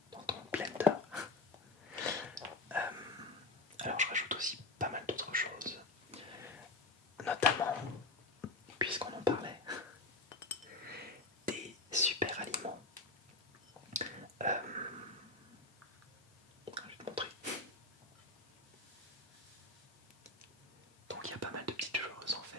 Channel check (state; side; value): quieter; right; 3.2 dB